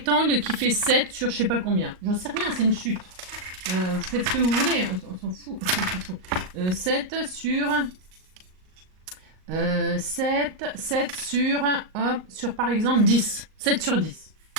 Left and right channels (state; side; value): late; left; 38 ms